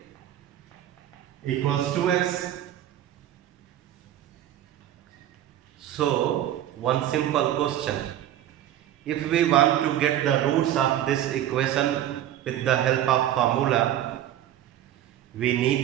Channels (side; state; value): left; quieter; 12.1 dB